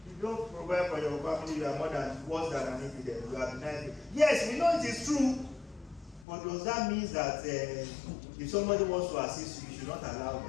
If you don't provide for your family, you are worse than an infidel. You are denied. Yes, we know it is true. But does that mean that if somebody wants to assist you, you should not allow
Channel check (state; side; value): drops out; right; at 6.2 s